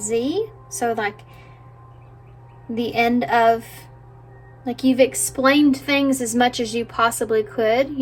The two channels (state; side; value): identical; both; correlation 1.00